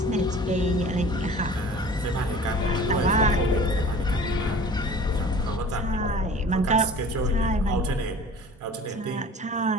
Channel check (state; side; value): normal; both; correlation 0.43